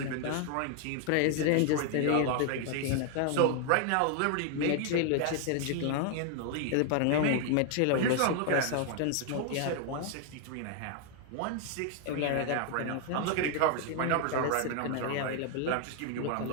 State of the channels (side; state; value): both; different; correlation 0.00